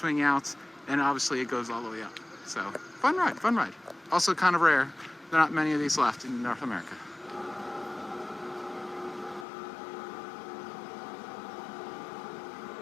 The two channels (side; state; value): right; drops out; at 9.5 s